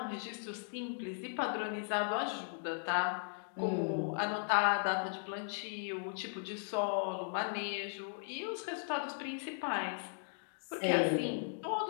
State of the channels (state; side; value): silent; right; digital silence